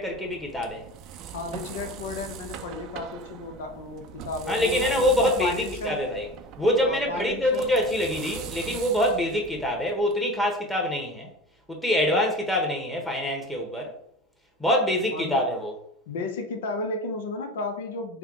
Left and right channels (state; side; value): normal; both; correlation 0.34